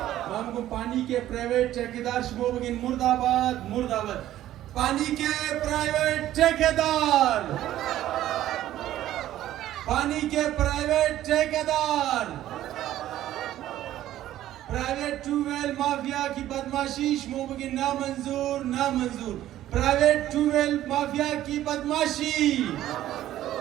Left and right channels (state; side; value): quieter; left; 13.3 dB